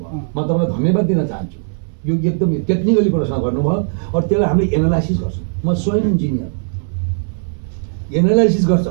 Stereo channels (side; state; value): left; silent; 68 dB below the other